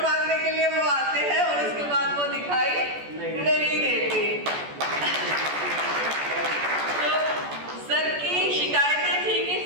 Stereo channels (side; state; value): left; late; 14 ms